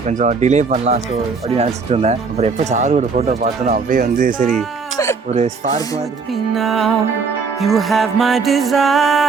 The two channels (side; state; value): left; quieter; 4.9 dB